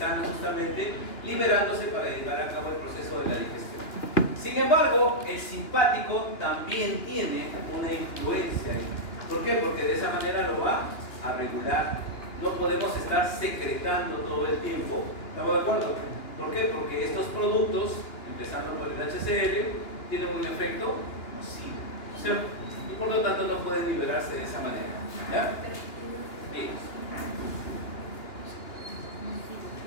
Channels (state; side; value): late; right; 2.9 ms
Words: justamente liberándose para llevar a cabo el proceso de la digestión. Sin embargo, el simpático también tiene una influencia ahí. ¿Por qué? Porque de esa manera lo va a regular. No podemos estar secretando todo el tiempo. ¿Estamos de acuerdo? ¿Por qué? Porque estos productos, empezando por el HCl, tienen un efecto nocivo, ¿cierto? Y por lo tanto no pueden liberarse de esa manera. ¿Ya? Bien.